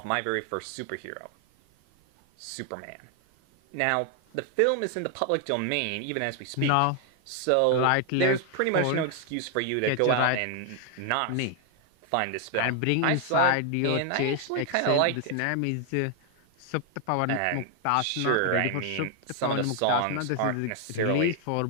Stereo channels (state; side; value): different; both; correlation 0.00